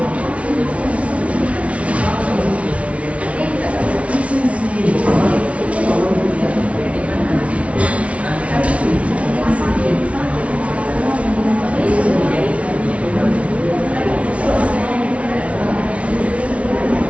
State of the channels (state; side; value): late; left; 0.063 ms